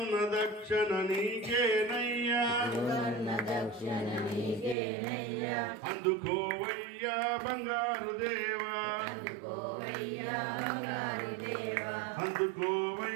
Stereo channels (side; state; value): left; drops out; at 4.8 s